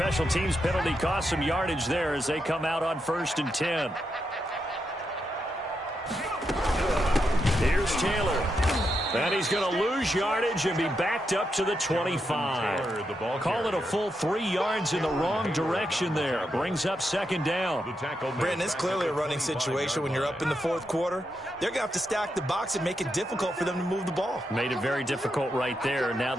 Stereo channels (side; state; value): both; normal; correlation 0.84